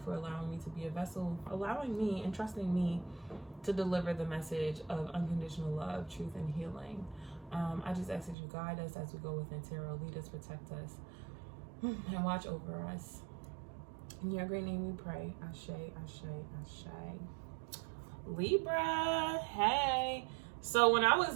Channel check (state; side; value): drops out; left; at 8.3 s